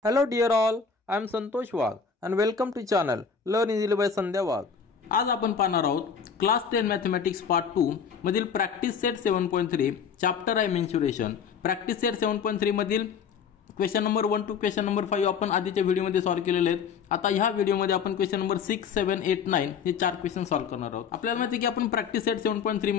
Hello dear all, I am Santosh Wagh and welcome to channel Learn Easily by Sandhya Wagh. आज आपण पाहणार आहोत class 10 mathematics part 2 मधील practice set 7.3 chapter आहे mensuration. Practice set 7.3 मधील question number 1 to question number 5 आपण आधीच्या व्हिडिओमध्ये सॉल्व्ह केलेले आहेत. आता ह्या व्हिडिओमध्ये आपण क्वेश्चन नंबर 6, 7, 8, 9 हे चार क्वेश्चन सॉल्व्ह करणार आहोत. आपल्याला माहिती आहे की आपण प्रॅक्टिस सेट 7.3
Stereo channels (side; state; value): right; quieter; 6.4 dB